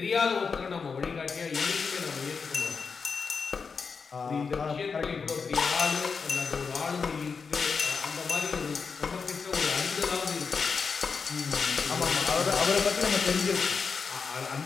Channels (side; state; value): right; quieter; 5.4 dB